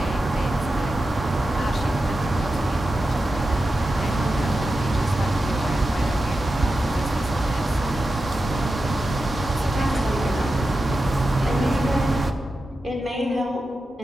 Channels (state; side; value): normal; both; correlation 0.91